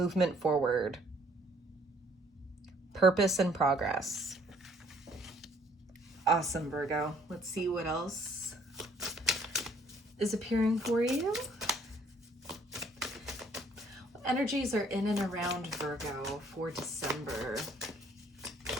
forward. Purpose and progress. Awesome, Virgo. Let's see what else is appearing for you. What energies are in and around Virgo for December?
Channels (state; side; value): normal; both; correlation 0.62